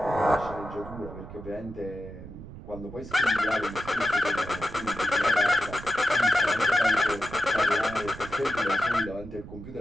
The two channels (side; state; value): right; noise; rumble, 14 dB below the sound